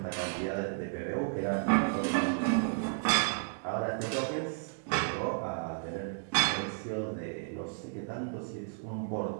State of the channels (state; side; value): silent; left; digital silence